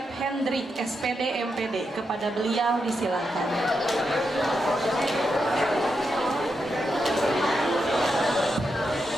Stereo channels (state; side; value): normal; both; correlation 0.85